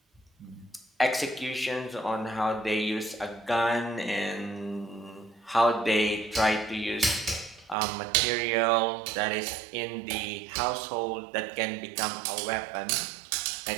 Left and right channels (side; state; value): left; drops out; at 7.8 s